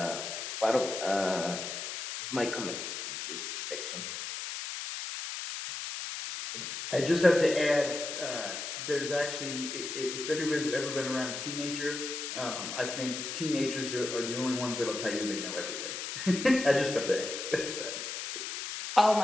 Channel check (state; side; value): noise; left; hiss, 5 dB below the sound